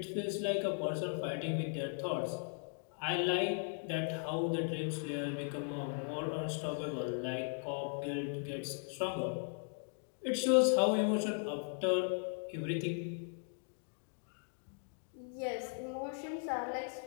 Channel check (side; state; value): right; silent; 53 dB below the other